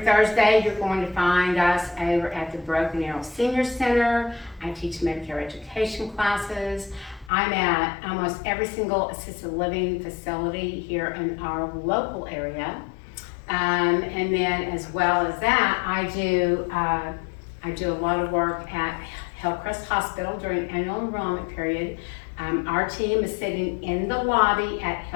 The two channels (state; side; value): drops out; right; at 7.3 s